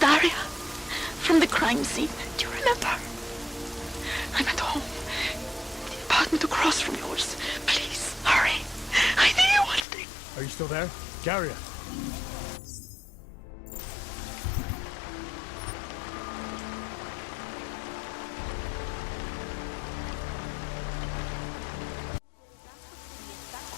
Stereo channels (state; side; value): drops out; right; at 9.9 s